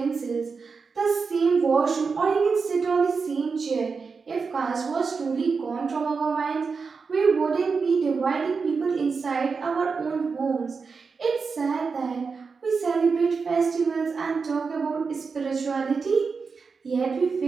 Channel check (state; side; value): quieter; left; 5.0 dB